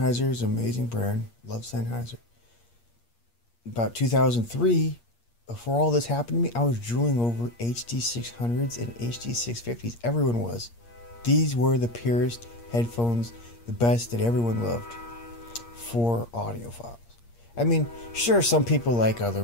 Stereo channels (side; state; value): right; late; 8.5 ms